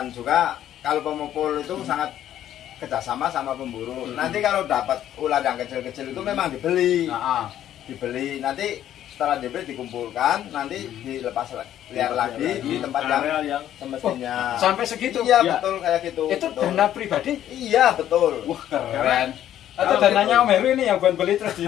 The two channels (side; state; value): right; quieter; 11.5 dB